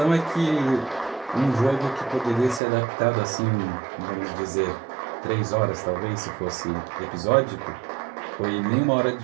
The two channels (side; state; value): left; drops out; at 2.6 s